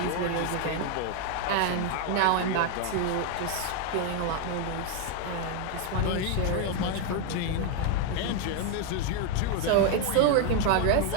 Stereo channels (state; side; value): different; both; correlation 0.01